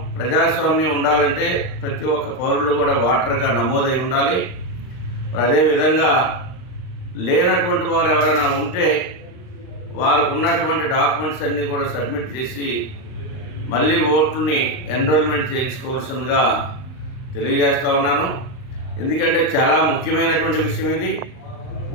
ప్రజాస్వామ్యం ఉండాలంటే ప్రతి ఒక్క పౌరులు కూడా ఓటర్గా నమోదై ఉండాలి. అదేవిధంగా లేనటువంటి వారు ఎవరైనా ఉంటే వారికి ఉన్నటువంటి డాక్యుమెంట్స్ అన్నీ కూడా సబ్మిట్ చేసి మళ్ళీ ఓట్లని ఎన్రోల్మెంట్ చేయించుకోవాల్సిందిగా తెలియజేస్తూ ఉన్నాను. ఎందుకంటే చాలా ముఖ్యమైనటువంటి విషయం ఇది.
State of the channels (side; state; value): right; late; 39 ms